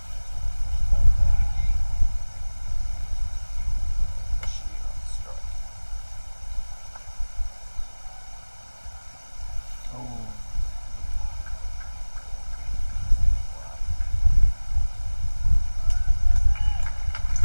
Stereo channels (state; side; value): inverted; both; correlation -1.00